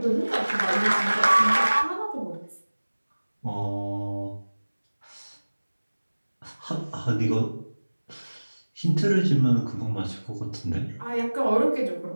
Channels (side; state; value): both; inverted; correlation -1.00